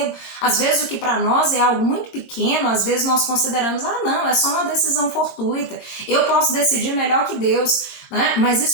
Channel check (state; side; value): late; right; 21 ms